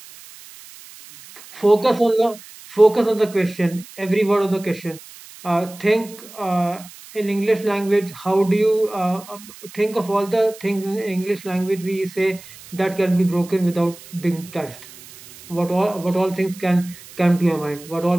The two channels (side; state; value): right; noise; hiss, 19 dB below the sound